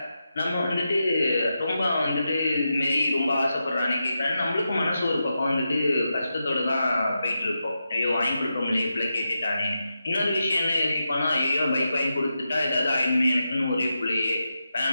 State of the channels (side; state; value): both; inverted; correlation -0.88